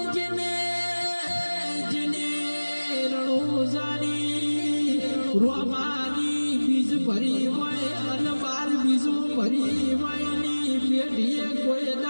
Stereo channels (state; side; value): inverted; both; correlation -1.00